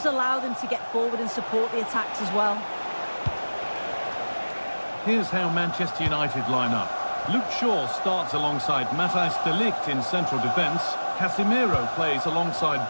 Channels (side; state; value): both; inverted; correlation -1.00